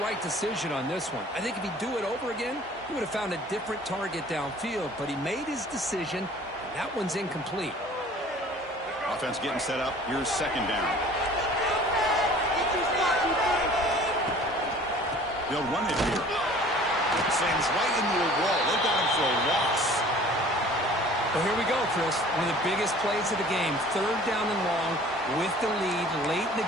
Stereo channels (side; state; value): both; normal; correlation 0.48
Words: decision on this one. I think if he'd do it over again, he would have found a different target downfield. But he made his decision, and that one's incomplete. Offense getting set up. Here's second down. They'll run it here. Sends right into a wall. They got him for a loss. Well, here we go, Chris. One of the biggest plays of the game. 3rd down and long with the lead late in